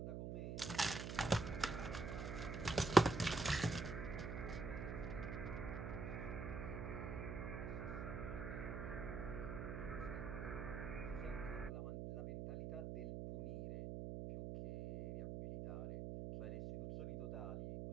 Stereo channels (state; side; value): noise; right; hum, 4 dB below the sound